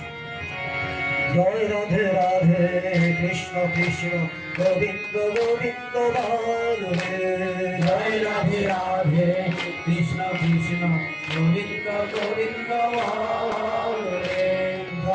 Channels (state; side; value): identical; both; correlation 1.00